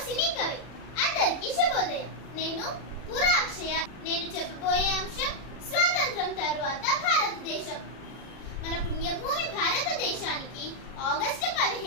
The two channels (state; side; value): late; right; 40 ms